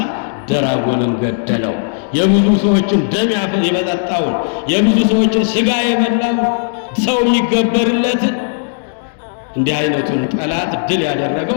ደራጎንን ገደለው። የብዙ ሰዎችን ደም የበጠጣውን የብዙ ሰዎችን ስጋ የበላው ሰው የሚገበርለትን እንዲህ አይነቱን ጠላት ድል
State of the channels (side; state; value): right; silent; digital silence